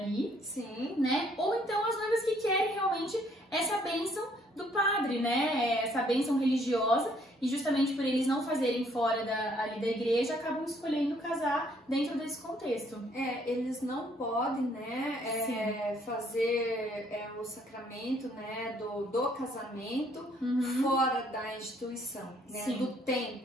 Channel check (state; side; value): normal; both; correlation 0.65